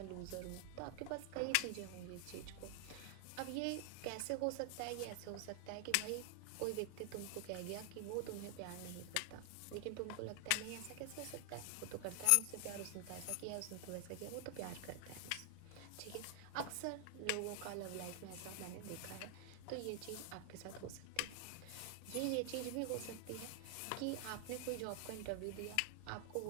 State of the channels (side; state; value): both; different; correlation 0.00